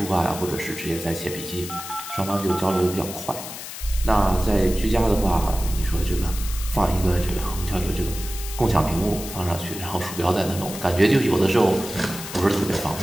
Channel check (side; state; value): left; noise; hiss, 10 dB below the sound